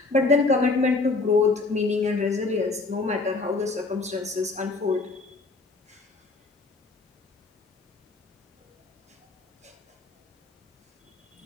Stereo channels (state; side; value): quieter; right; 3.7 dB